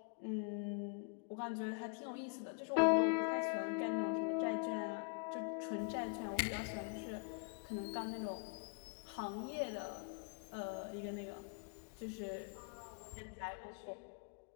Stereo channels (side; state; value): right; quieter; 38.2 dB